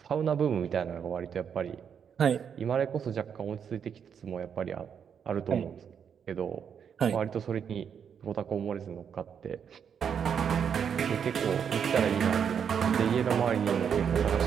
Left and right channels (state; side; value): quieter; left; 7.5 dB